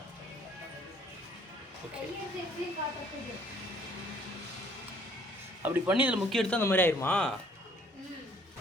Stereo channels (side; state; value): both; normal; correlation 0.61